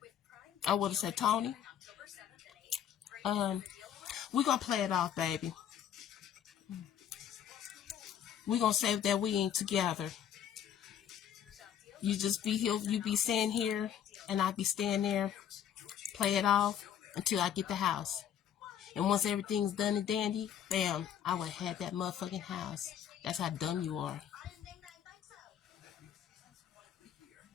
I would have said, Tony, we're going to play it off, baby. We're going to say that we ain't together. You just be here, you be staying here, and I be staying there. Play it off until I get the house. And once everything's done and dandy, bam, I would have had that motherfucking house. That's how dumb you are.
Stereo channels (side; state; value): right; quieter; 9.5 dB